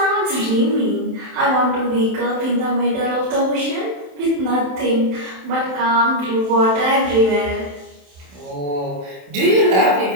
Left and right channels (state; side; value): late; left; 27 ms